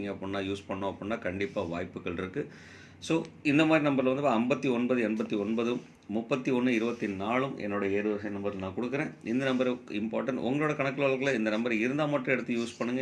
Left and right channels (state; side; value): identical; both; correlation 1.00